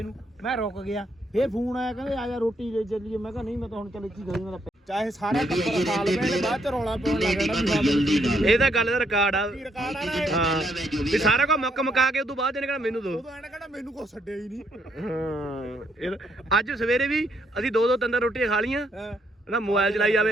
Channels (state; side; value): normal; both; correlation 0.73